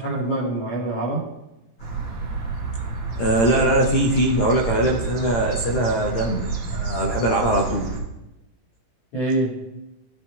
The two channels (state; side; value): late; right; 17 ms